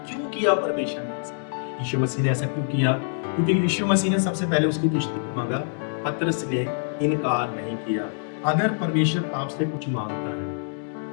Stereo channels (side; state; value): right; silent; 62 dB below the other